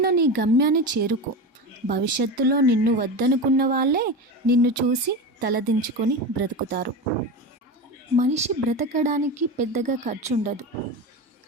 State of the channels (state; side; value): normal; both; correlation 0.23